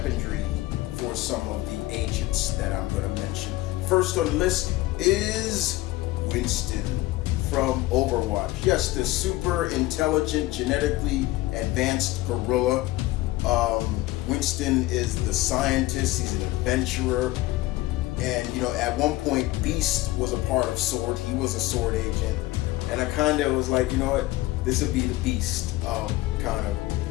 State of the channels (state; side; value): quieter; right; 17.9 dB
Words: for some of the agents that I'm going to mention. First on the list is Winston from Overwatch. Yes, the super intelligent, genetically advanced gorilla. Winston is the scientist. He's an adventurer. And, at one point, Beast was a part of S.W.O.R.D. He was a S.W.O.R.D. agent. And I kind of was like, you know what? This would be the Beast, kind of.